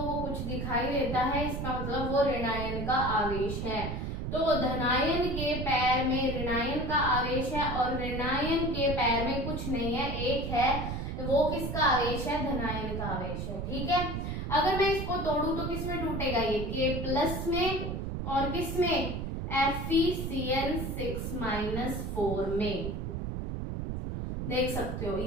को कुछ दिखाई देता है, इसका मतलब वो ऋणायन का आवेश है। तो धनायन के पैर में ऋणायन का आवेश है और ऋणायन के पैर में कुछ नहीं है, एक है, वो किसका आवेश है, धनायन का आवेश है। ठीक है। अगर मैं इसको तोड़ूं तो किसमें टूटेगा, ये K+ में, और किसमें, FeCN6-4 में। देख सकते हो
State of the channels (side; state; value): right; noise; rumble, 3 dB below the sound